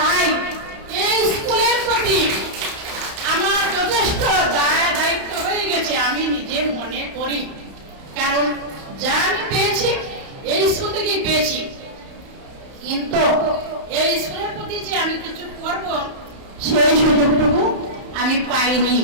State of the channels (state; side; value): late; left; 31 ms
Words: এই স্কুলের প্রতি আমার যথেষ্ট দায়িত্ব হয়ে গেছে আমি নিজে মনে করি, কারণ যা আমি পেয়েছি এই স্কুল থেকেই পেয়েছি। কিন্তু এই স্কুলের প্রতি যে আমি কিছু করব সেই সুযোগটুকু আমি পাইনি।